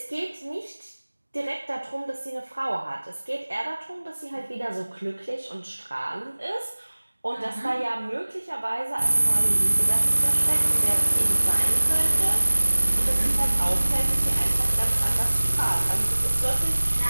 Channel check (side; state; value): both; inverted; correlation -1.00